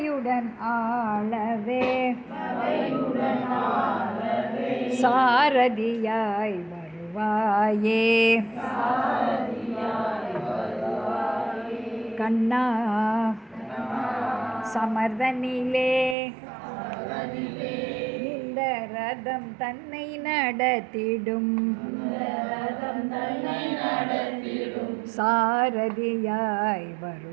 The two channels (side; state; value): left; drops out; at 16.2 s